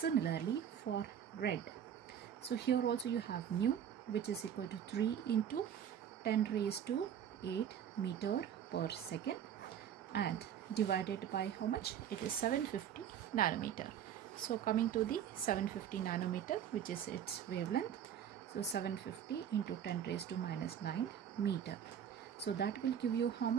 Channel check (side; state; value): left; quieter; 9.1 dB